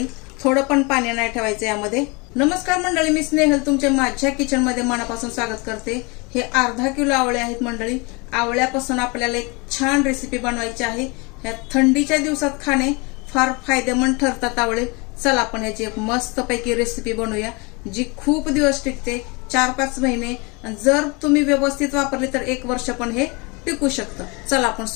थोडं पण पाणी नाही ठेवायचं यामध्ये। नमस्कार मंडळी, मी स्नेहल तुमच्या माझ्या किचन मध्ये मनापासून स्वागत करते। हे अर्धा किलो आवळे आहेत मंडळी। आवळ्यापासून आपल्याला एक छान रेसिपी बनवायची आहे। या थंडीच्या दिवसात खाणे फार फायदेमंद ठरतात आवळे। चला आपण याची एक मस्त पैकी रेसिपी बनवूया, जी खूप दिवस टिकते, 4-5 महिने। जर तुम्ही व्यवस्थित वापरली तर 1 वर्ष पण हे टिकू शकतं। चला आपण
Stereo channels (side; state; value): right; quieter; 28.8 dB